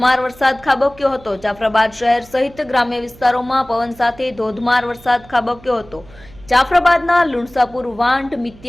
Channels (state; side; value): noise; right; hum, 23 dB below the sound